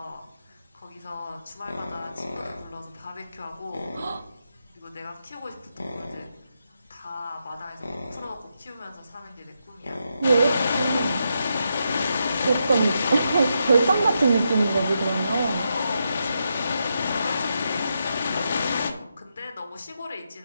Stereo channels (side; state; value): both; inverted; correlation -0.83